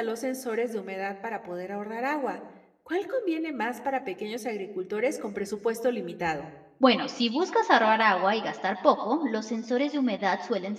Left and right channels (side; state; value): both; identical; correlation 1.00